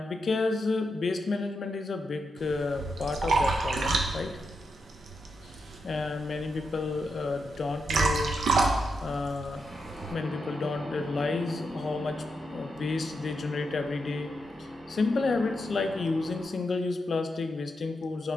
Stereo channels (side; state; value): both; normal; correlation 0.85